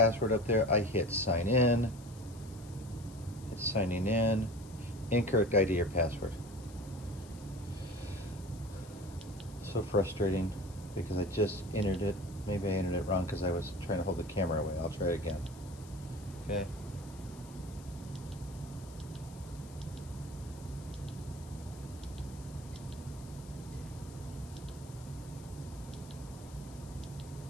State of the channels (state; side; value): noise; left; hiss, 21 dB below the sound